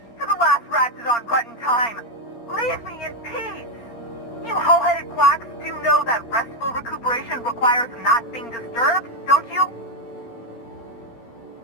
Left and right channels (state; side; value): late; right; 16 ms